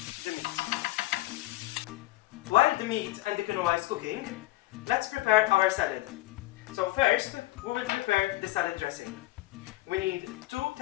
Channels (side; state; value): right; quieter; 18.5 dB